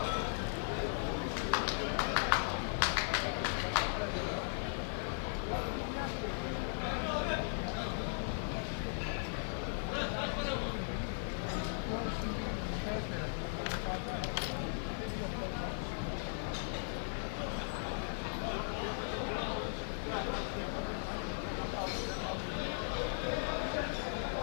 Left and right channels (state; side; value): silent; right; 53 dB below the other